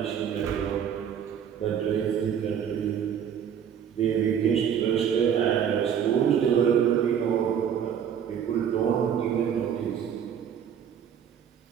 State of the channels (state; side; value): quieter; left; 8.5 dB